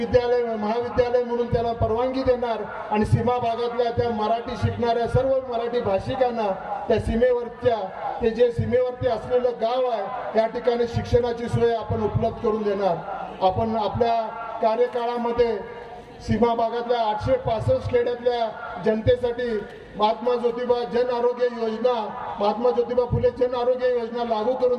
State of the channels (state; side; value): identical; both; correlation 1.00